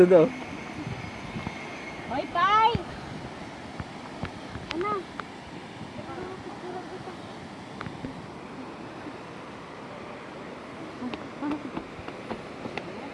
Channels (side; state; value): both; identical; correlation 1.00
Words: Hoy, Pai! Ano?